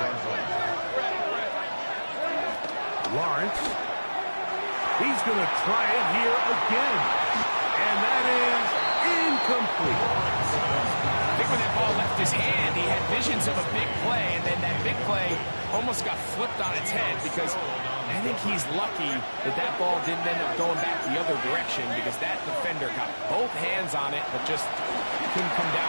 Lawrence. He's going to try it here again. And that is incomplete. I think when that ball left his hand, he had visions of a big play, and then that big play almost got flipped on its head because I think he's lucky that that ball didn't end up going back the other direction because that defender got both hands on it but just couldn't come down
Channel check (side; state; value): both; inverted; correlation -1.00